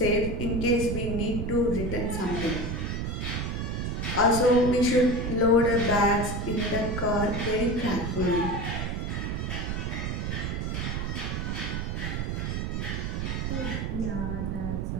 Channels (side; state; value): right; noise; rumble, 2 dB below the sound